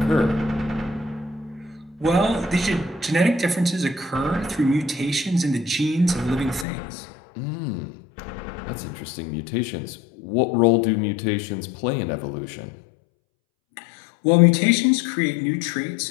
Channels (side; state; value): right; drops out; at 6.7 s